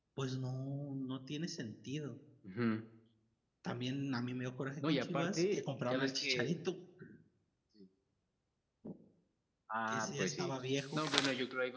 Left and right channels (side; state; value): both; identical; correlation 1.00